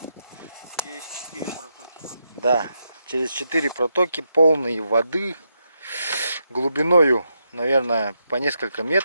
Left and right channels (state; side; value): inverted; both; correlation -0.83